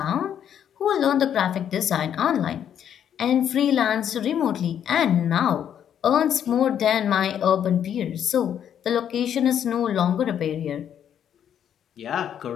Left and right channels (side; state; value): right; quieter; 9.3 dB